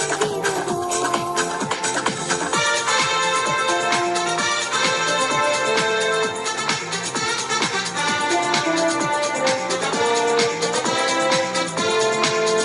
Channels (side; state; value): both; identical; correlation 1.00